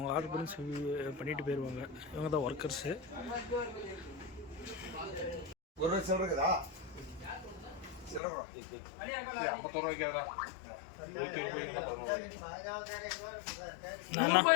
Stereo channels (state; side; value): drops out; right; at 8.2 s